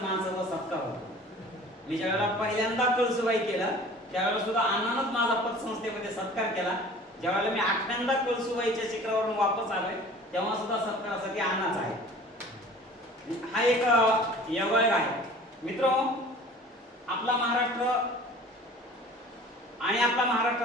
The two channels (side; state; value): both; normal; correlation 0.45